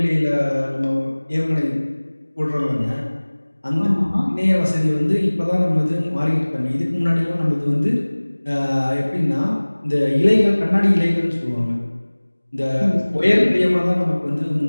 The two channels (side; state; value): both; inverted; correlation -1.00